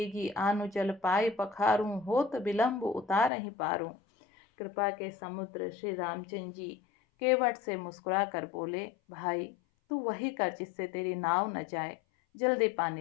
आनु जल पाए पखारूं, होत विलंब उतार ही पारूं। कृपा के समुद्र श्री रामचंद्र जी केवट से मुस्कुरा कर बोले, भाई तू वही कर जिससे तेरी नाव न जाए। जल्दी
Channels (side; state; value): right; drops out; at 3.3 s